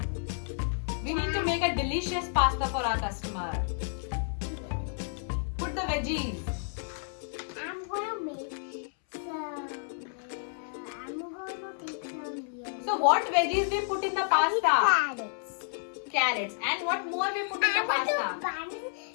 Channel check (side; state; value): right; silent; 57 dB below the other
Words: We need to make a delicious pasta for our customer. Put the veggies. I'm gonna make some. I'm gonna take some. So what veggies we put in the pasta? Carrots. Carrots. And what more we put in the pasta?